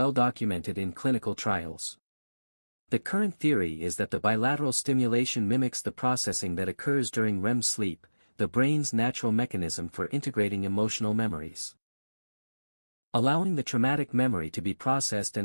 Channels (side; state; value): both; inverted; correlation -1.00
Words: documented in clinical trials. The current theory is that the bilateral stimulation mimics the processing that occurs during REM sleep, the brain's natural mechanism for integrating emotional memories. Allowing the traumatic memory to be processed